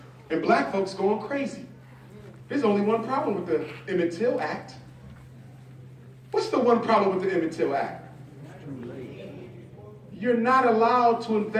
And black folks going crazy. There's only one problem with the Emmett Till Act. What's the one problem with the Emmett Till Act? You're not allowed to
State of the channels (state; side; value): identical; both; correlation 1.00